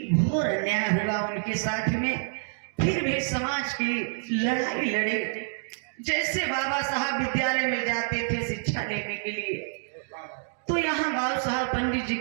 घोर अन्याय हुआ उनके साथ में, फिर भी समाज की लड़ाई लड़े। जैसे बाबा साहब विद्यालय में जाते थे शिक्षा लेने के लिए, तो यहाँ बाबू साहब पंडित जी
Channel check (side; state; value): left; silent; 60 dB below the other